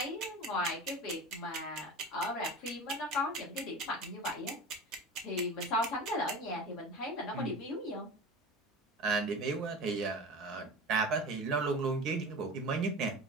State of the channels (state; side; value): normal; both; correlation 0.33